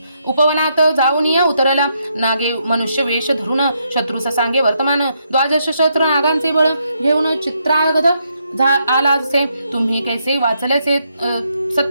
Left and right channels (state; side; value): inverted; both; correlation -0.77